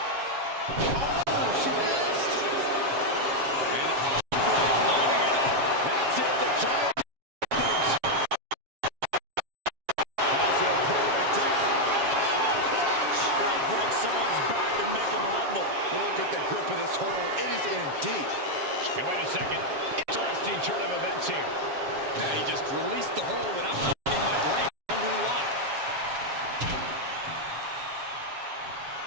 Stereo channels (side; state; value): left; late; 7.3 ms